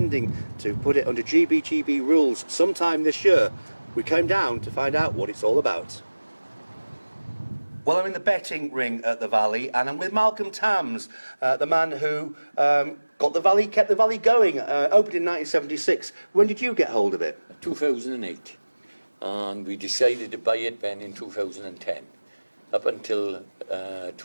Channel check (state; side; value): inverted; both; correlation -1.00